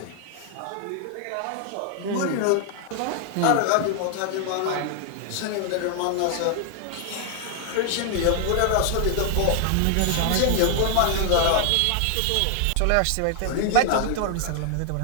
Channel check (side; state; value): both; different; correlation 0.00